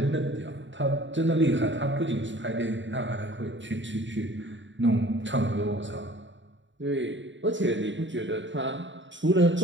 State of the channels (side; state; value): left; late; 0.54 ms